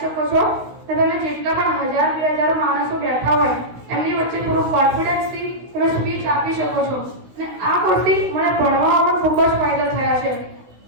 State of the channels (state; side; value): late; left; 16 ms